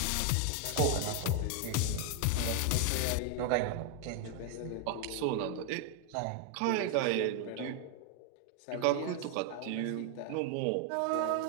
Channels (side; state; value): both; different; correlation 0.00